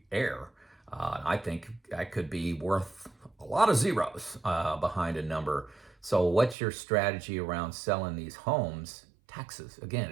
error. I think that could be worth a lot of zeros behind a number. So what's your strategy around selling these homes? Taxes. Again,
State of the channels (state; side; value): drops out; left; at 6.6 s